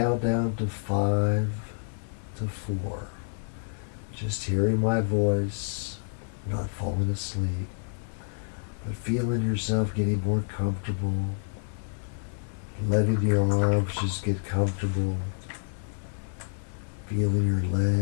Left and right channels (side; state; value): right; silent; 59 dB below the other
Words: down to 5 to 4, just hearing my voice, not falling asleep, but feeling yourself getting more comfortable, letting your arms just get comfortable, feeling your